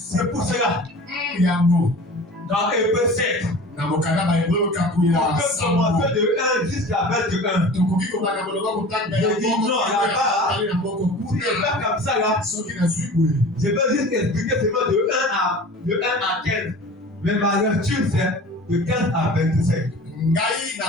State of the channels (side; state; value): both; normal; correlation 0.39